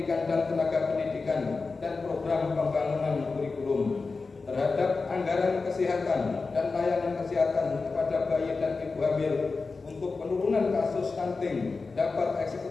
dan tenaga pendidikan, dan program pembangunan kurikulum. Terhadap anggaran kesehatan dan layanan kesehatan kepada bayi dan ibu hamil untuk penurunan kasus stunting dapat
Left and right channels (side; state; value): right; quieter; 4.1 dB